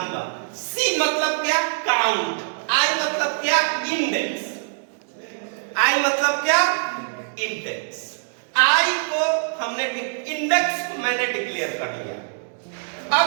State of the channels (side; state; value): left; silent; digital silence